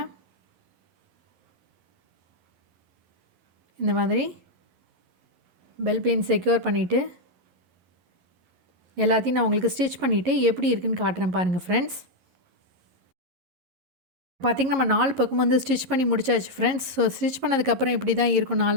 இந்த மாதிரி பெல் பின் செக்யூர் பண்ணிவிட்டு எல்லாத்தையும் நான் உங்களுக்கு ஸ்டிச் பண்ணிவிட்டு எப்படி இருக்குன்னு காட்டுறேன் பாருங்கள் ஃப்ரெண்ட்ஸ். பார்த்திங்கன்னா நம்ம 4 பக்கமும் வந்து ஸ்டிச் பண்ணி முடிச்சாச்சு ஃப்ரெண்ட்ஸ். ஸோ ஸ்டிச் பண்ணதுக்கப்புறம் இப்படி தான் இருக்கும்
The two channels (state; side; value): late; left; 11 ms